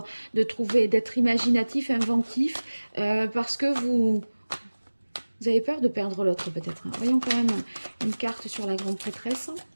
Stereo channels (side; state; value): both; inverted; correlation -1.00